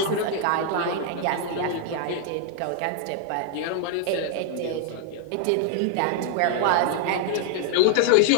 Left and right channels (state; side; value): different; both; correlation 0.00